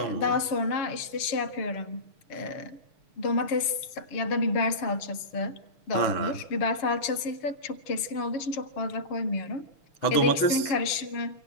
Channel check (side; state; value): right; late; 6.6 ms